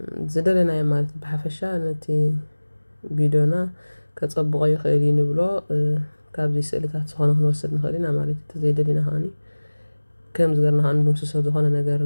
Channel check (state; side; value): inverted; both; correlation -1.00